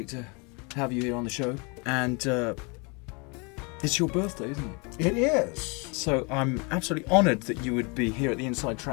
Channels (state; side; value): quieter; right; 31.3 dB